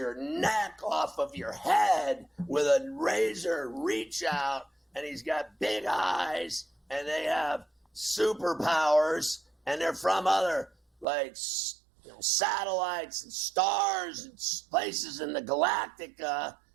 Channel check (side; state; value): left; drops out; at 11.1 s